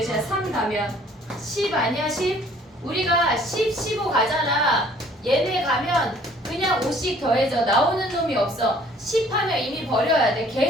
3 가면 10 아니야? 10? 우리가 10, 15 가잖아. 얘네 가면 그냥 5씩 더해져. 나오는 놈이 없어. 10 하면 이미 버려야 돼.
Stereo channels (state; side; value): normal; both; correlation 0.56